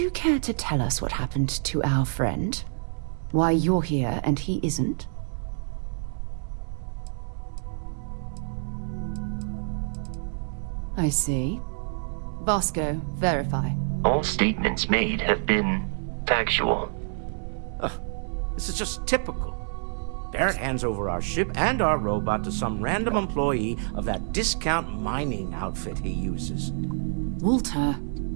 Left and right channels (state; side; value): silent; left; 60 dB below the other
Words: care to tell us what happened to our friend? Why you're here and he isn't? I see. Vasco, verify. All statements made have been factual. This is just typical. Barrett hands over our ship and our robot to some random employee of that discount mining outfit he uses. Walter.